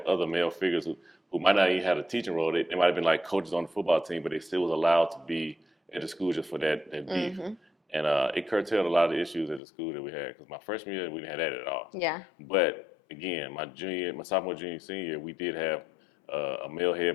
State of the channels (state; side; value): drops out; right; at 9.6 s